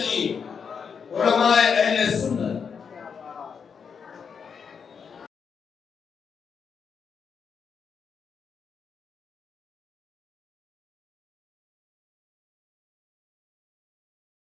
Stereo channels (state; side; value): quieter; right; 6.4 dB